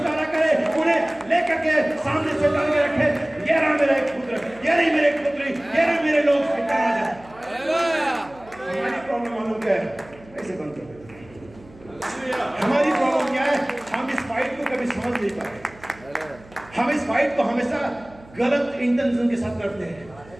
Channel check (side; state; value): right; noise; hum, 23 dB below the sound